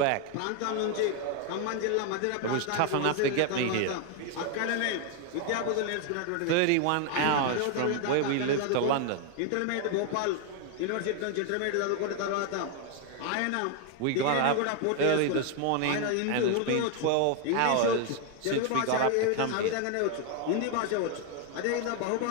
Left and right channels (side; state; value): both; different; correlation 0.01